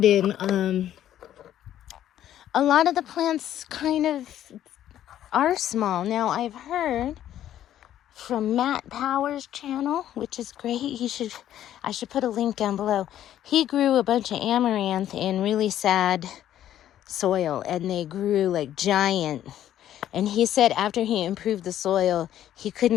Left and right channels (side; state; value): right; quieter; 11.6 dB